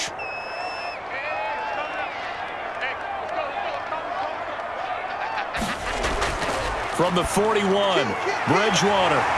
From the 41, Bridgewater.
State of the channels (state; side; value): identical; both; correlation 1.00